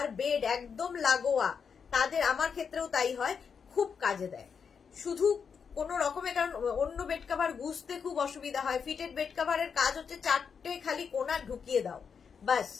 বেড একদম লাগোয়া তাদের, আমার ক্ষেত্রেও তাই হয়, খুব কাজে দেয়। শুধু কোনো রকমের, কারণ অন্য বেড কভার গুছতে খুব অসুবিধা হয়। ফিটেড বেড কভারের কাজ হচ্ছে চারটে খালি কোনা ঢুকিয়ে দাও, বাস,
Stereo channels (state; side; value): quieter; right; 6.3 dB